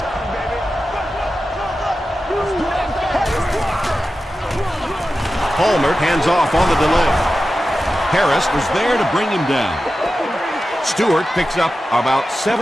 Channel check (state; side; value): normal; both; correlation 0.93